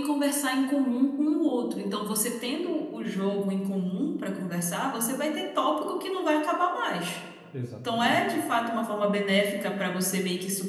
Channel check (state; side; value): identical; both; correlation 1.00